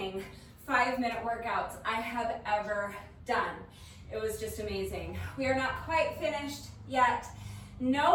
5-minute workouts I have ever done. It was just amazing. We are not quite finished yet.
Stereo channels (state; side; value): identical; both; correlation 1.00